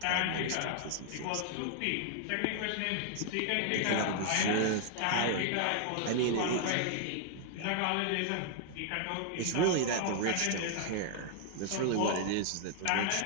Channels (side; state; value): both; different; correlation 0.00